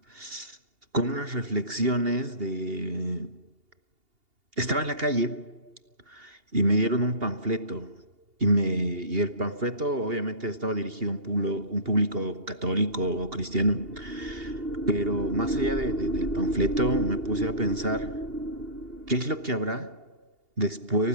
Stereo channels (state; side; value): late; left; 2.8 ms